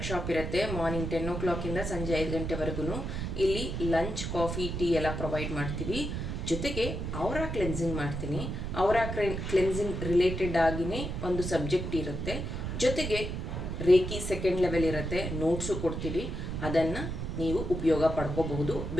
ಇರುತ್ತೆ. ಮಾರ್ನಿಂಗ್ 10 o'clock ಸಂಜೆ 5 ಗಂಟೆವರೆಗೂ. ಇಲ್ಲಿ ಲಂಚ್, ಕಾಫಿ, ಟೀ ಎಲ್ಲ ಪ್ರೊವೈಡ್ ಮಾಡ್ತೀವಿ. ಜೊತೆಗೆ ಔರಾ ಕ್ಲೆನ್ಸಿಂಗ್ ಮಾಡ್ತೀನಿ. ಔರಾ ಕ್ಲೆನ್ಸಿಂಗ್ ರಿಲೇಟೆಡ್ ಆಗಿನೇ ಒಂದು ಸಬ್ಜೆಕ್ಟ್ ಇರುತ್ತೆ. ಜೊತೆಗೆ ರೇಖಿ ಸೆಕೆಂಡ್ ಲೆವೆಲ್ ಇರುತ್ತೆ, ನೋಟ್ಸು ಕೊಡ್ತೀವಿ. ಅದನ್ನು ನೀವು ಉಪಯೋಗ ಪಡ್ಕೋಬಹುದು.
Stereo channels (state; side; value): noise; right; rumble, 4 dB below the sound